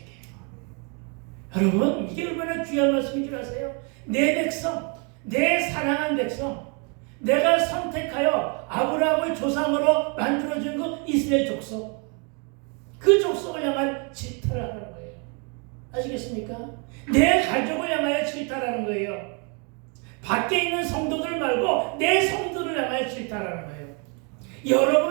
여러분 이게 얼마나 귀한 말씀인 줄 아세요? 내 백성, 내 사랑한 백성, 내가 선택하여 아브라함을 조상으로 만들어준 그 이스라엘 족속, 그 족속을 향한 질타를 하는 거예요. 아시겠습니까? 내 가족을 향하여 질타하는 거예요. 밖에 있는 성도들 말고 내 성도를 향하여 질타하는 거예요.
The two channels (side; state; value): left; quieter; 34.8 dB